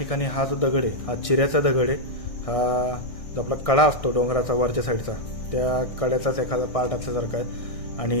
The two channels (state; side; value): late; right; 1.6 ms